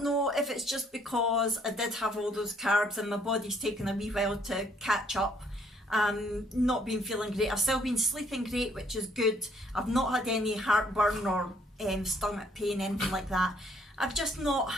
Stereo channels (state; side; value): normal; both; correlation 0.65